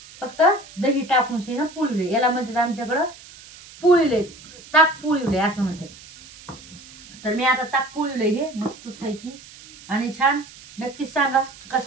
फक्त दही टाकून ना पोळीवलंय. याला म्हणतात आमच्याकडं पोळीवलंय, ताक पोळीवलंय असं म्हणतात. तर मी आता ताक पोळीवलंय हे मस्तच पैकी. आणि छान नक्कीच सांगा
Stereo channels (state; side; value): noise; right; hiss, 20 dB below the sound